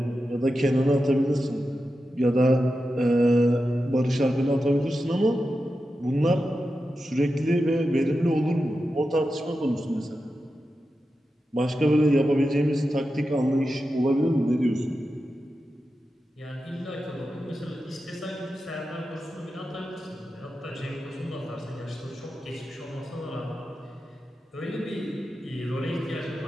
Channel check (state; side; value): normal; both; correlation 0.91